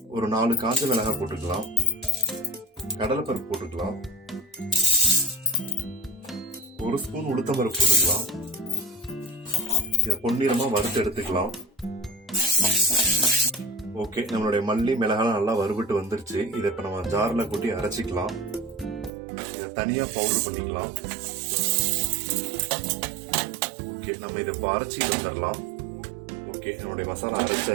ஒரு 4 காஞ்ச மிளகாய் போட்டுக்கலாம். கடலைப்பருப்பு போட்டுக்கலாம். 1 ஸ்பூன் உளுத்தம்பருப்பு போட்டுக்கலாம். இதை பொன்னிறமா வறுத்து எடுத்துக்கலாம். ஓகே, நம்மளுடைய மல்லி மிளகாய் நல்லா வறுபட்டு வந்துருச்சு. இதை இப்ப நம்ம ஜார்ல கூட்டி அரைச்சிக்கலாம். இதை தனியா பவுடர் பண்ணிக்கலாம். ஓகே, நம்ம இதை இப்போ அரைச்சிட்டு வந்துடலாம். ஓகே, நம்மளுடைய மசாலா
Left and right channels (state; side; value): drops out; left; at 19.1 s